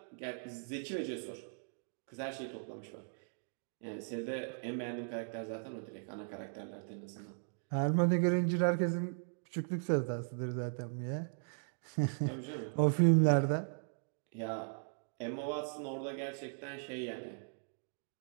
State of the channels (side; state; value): left; silent; digital silence